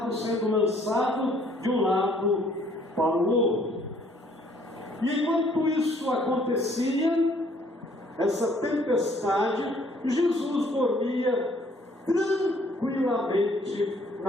sendo lançado de um lado para o outro. E enquanto isso acontecia, essa tempestade, Jesus dormia tranquilamente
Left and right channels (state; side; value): normal; both; correlation 0.62